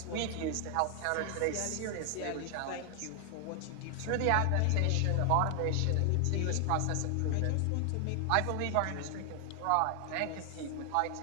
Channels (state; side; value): different; both; correlation 0.00